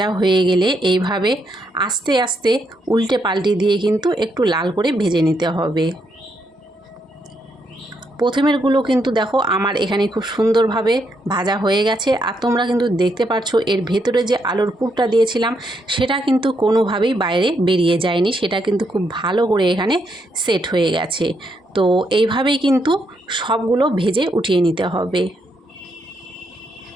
হয়ে গেলে এইভাবে আস্তে আস্তে উল্টে পাল্টে দিয়ে কিন্তু একটু লাল করে ভেজে নিতে হবে। প্রথমেরগুলো কিন্তু দেখো আমার এখানে খুব সুন্দরভাবে ভাজা হয়ে গেছে। আর তোমরা কিন্তু দেখতে পাচ্ছ এর ভেতরে যে আলুর পুরটা দিয়েছিলাম সেটা কিন্তু কোনোভাবেই বাইরে বেরিয়ে যায়নি, সেটা কিন্তু খুব ভালো করে এখানে সেট হয়ে গেছে। তো এইভাবেই কিন্তু সবগুলো ভেজে উঠিয়ে নিতে হবে।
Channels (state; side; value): normal; both; correlation 0.77